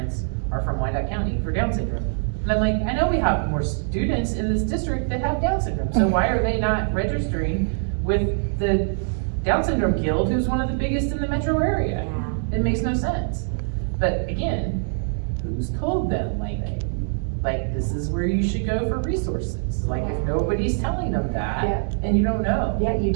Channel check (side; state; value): left; silent; digital silence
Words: are from Wyandotte County for Down syndrome. And I'm like, I know we have more students in this district that have Down syndrome, so why are they not registering with the Down Syndrome Guild, who's one of the biggest in the metro area? Yeah. It makes no sense. But again, who's told them, like this is where you should go for resources? Like, if nobody's telling them that, Yeah. and you don't know. Yeah, you